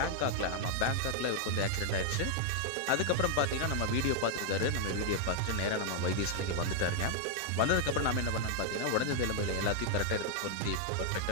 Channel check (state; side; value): different; both; correlation 0.00